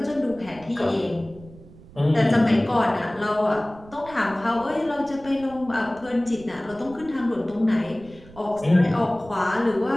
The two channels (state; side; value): noise; right; rumble, 21 dB below the sound